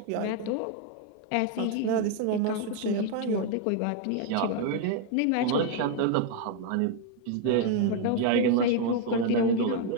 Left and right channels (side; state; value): both; different; correlation 0.01